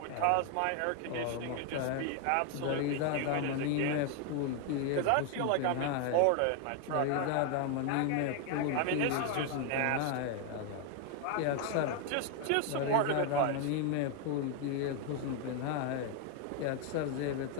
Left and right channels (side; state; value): both; different; correlation 0.01